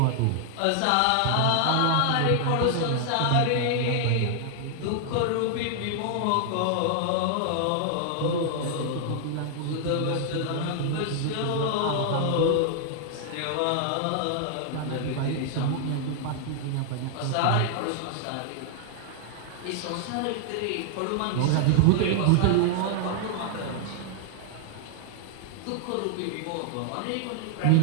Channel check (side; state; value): both; different; correlation 0.00